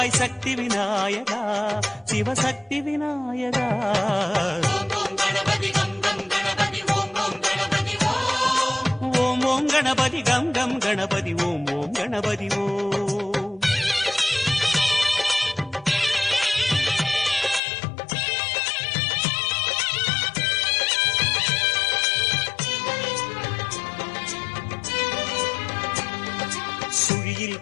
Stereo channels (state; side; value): drops out; right; at 17.6 s